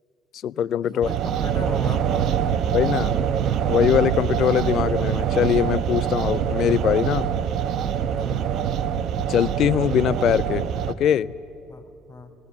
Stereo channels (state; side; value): normal; both; correlation 0.46